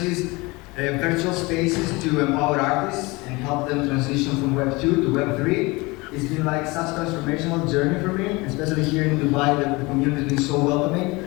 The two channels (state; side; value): quieter; right; 24.1 dB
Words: virtual spaces to empower artists and help them transition from Web 2 to Web 3. It's been like such a transformational journey for me, especially here in Dubai. The community has been so welcoming.